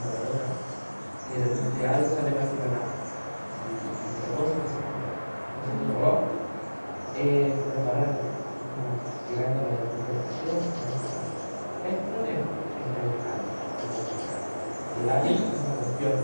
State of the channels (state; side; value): inverted; both; correlation -1.00